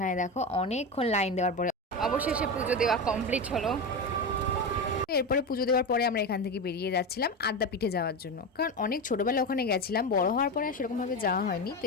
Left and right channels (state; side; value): normal; both; correlation 0.19